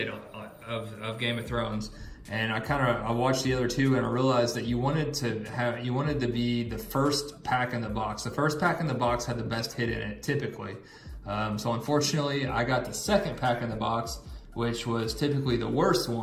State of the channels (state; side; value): identical; both; correlation 1.00